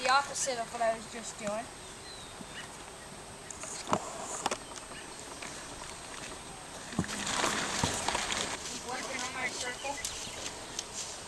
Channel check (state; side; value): identical; both; correlation 1.00